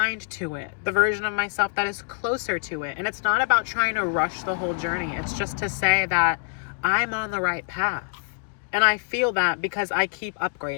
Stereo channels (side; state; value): right; silent; 57 dB below the other